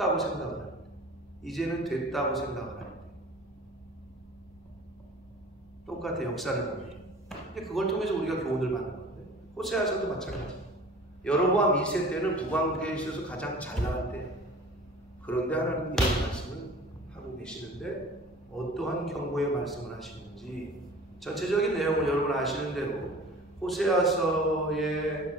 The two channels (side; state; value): both; normal; correlation 0.43